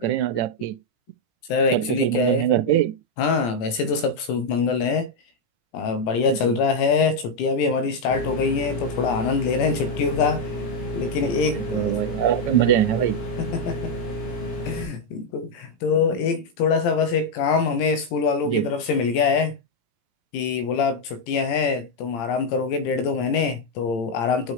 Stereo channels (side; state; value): right; late; 17 ms